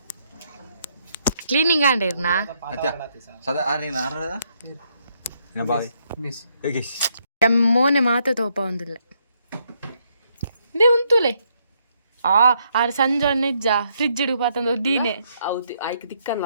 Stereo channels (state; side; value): inverted; both; correlation -0.74